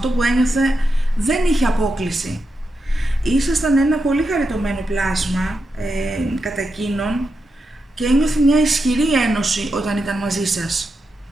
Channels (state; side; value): normal; both; correlation 0.86